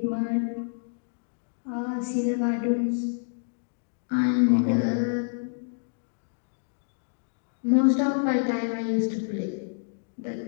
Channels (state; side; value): silent; right; digital silence